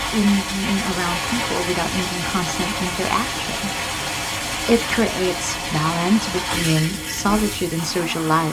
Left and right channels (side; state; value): both; identical; correlation 1.00